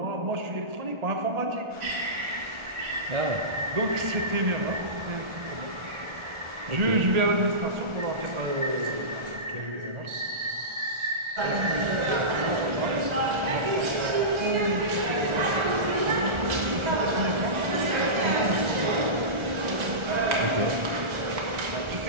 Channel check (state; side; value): late; left; 1.4 ms